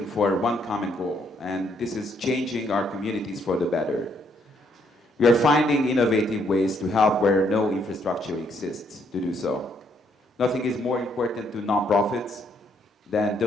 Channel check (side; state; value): both; normal; correlation 0.71